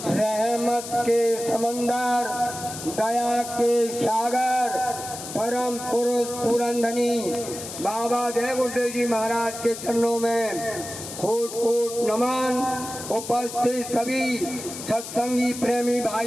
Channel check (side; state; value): left; noise; hiss, 10 dB below the sound